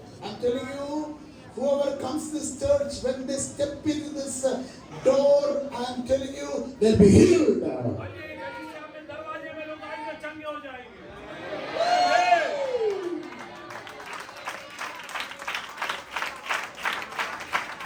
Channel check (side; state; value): both; identical; correlation 1.00